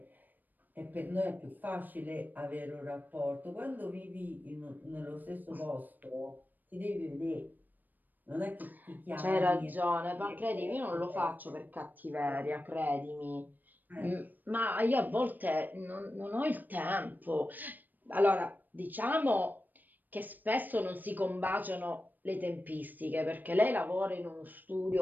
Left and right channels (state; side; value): late; left; 0.088 ms